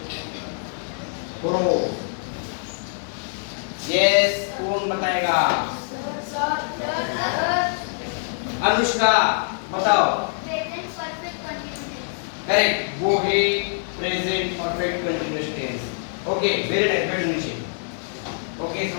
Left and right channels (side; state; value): right; silent; digital silence